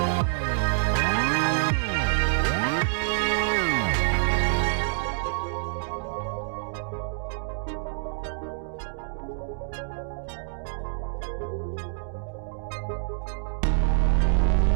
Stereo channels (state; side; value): silent; left; digital silence